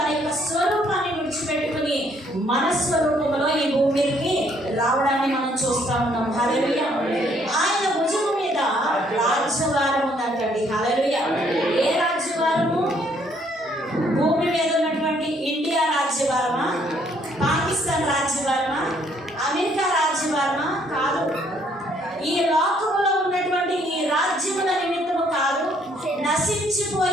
యొక్క స్వరూపాన్ని విడిచిపెట్టుకుని మన స్వరూపంలో ఈ భూమికి రావడాన్ని మనం చూస్తా ఉన్నాం. హల్లెలూయా. ఆయన భుజము మీద రాజ్యభారం ఉందంటండి. హల్లెలూయా. ఏ రాజ్యభారము? భూమి మీద ఉన్నటువంటి ఇండియా రాజ్యభారమా, పాకిస్తాన్ రాజ్యభారమా, అమెరికా రాజ్యభారమా? కాదు. ఈ లోకంలో ఉన్నటువంటి ఈ రాజ్యముల నిమిత్తము కాదు,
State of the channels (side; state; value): both; normal; correlation 0.66